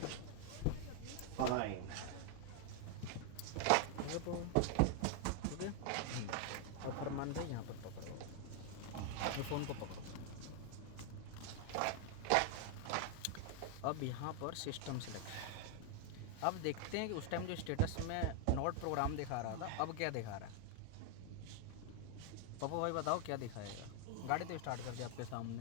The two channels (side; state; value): both; different; correlation 0.00